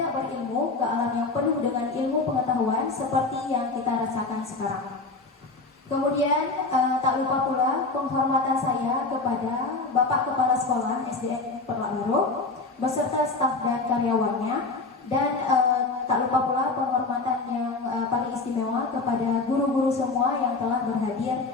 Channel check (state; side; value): quieter; right; 3.7 dB